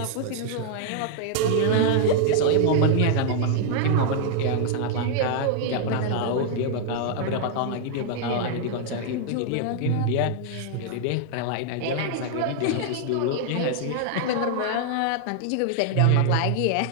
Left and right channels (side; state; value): both; different; correlation -0.01